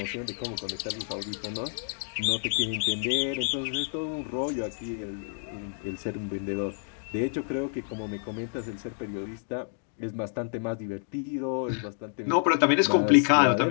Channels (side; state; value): right; silent; digital silence